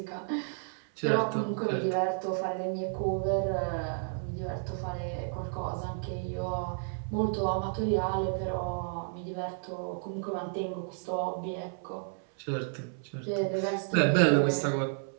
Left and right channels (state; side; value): silent; left; 57 dB below the other